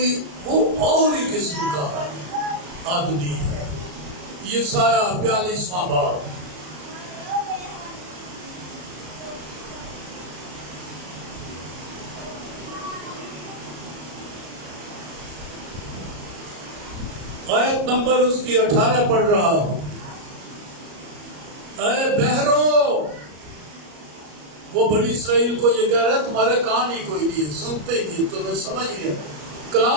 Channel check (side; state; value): left; late; 33 ms